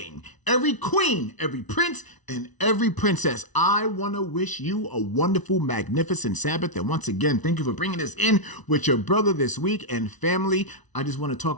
every queen, every prince, and every princess, I want to wish you a wonderful, magnificent Sabbath. And once again, thank you for bringing us in with your brother this week. And family, I just want to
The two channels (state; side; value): late; right; 1.0 ms